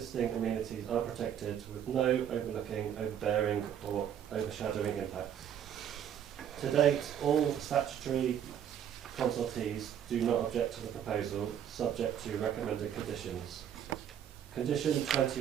amenities are protected with no overlooking, overbearing or overshadowing impacts. To date, all statutory consultees do not object to the proposal, subject to recommended conditions. Condition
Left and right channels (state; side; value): quieter; left; 9.5 dB